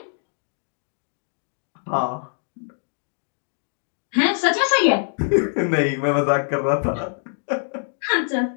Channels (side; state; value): right; silent; digital silence